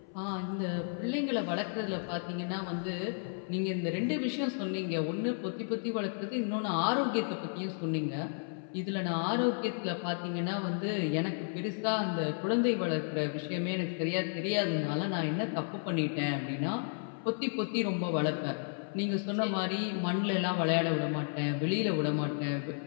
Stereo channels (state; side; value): silent; right; 56 dB below the other